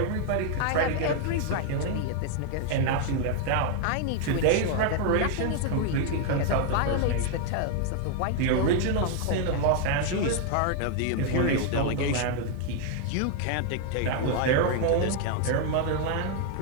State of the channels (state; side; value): different; both; correlation 0.00